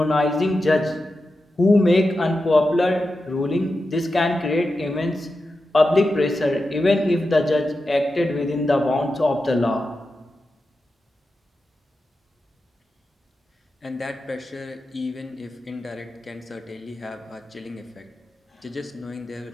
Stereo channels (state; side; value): normal; both; correlation 0.91